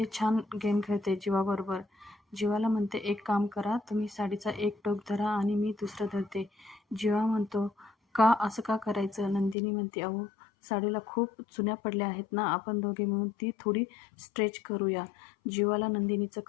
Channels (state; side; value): drops out; right; at 9.6 s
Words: छान गेम खेळते जीवाबरोबर. जीवाला म्हणते एक काम करा, तुम्ही साडीचा एक टोक धरा आणि मी दुसरं धरते. जीवा म्हणतो का, असं का करायचं? नंदिनी म्हणते अहो साडीला खूप चुन्या पडल्या आहेत ना, आपण दोघे मिळून ती थोडी स्ट्रेच करूया. जीवाला नंदिनीचं